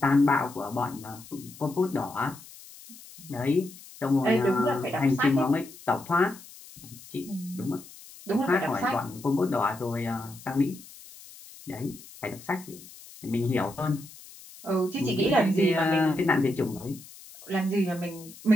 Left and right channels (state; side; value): noise; left; hiss, 19 dB below the sound